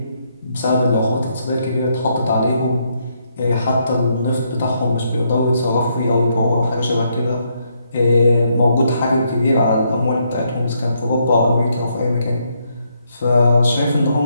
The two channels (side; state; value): both; inverted; correlation -0.76